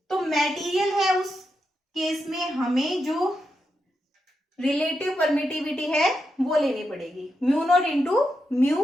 तो मटेरियल है उस केस में हमें जो रिलेटिव परमिटिविटी है वो लेनी पड़ेगी, mu naught into mu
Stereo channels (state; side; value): normal; both; correlation 0.85